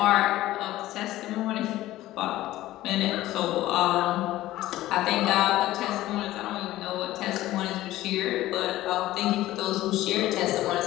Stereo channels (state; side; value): quieter; right; 15.7 dB